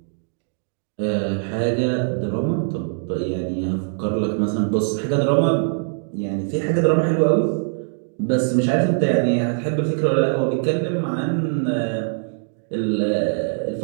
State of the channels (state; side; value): silent; left; digital silence